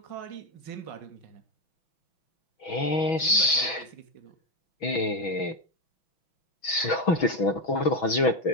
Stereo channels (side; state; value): right; late; 6.1 ms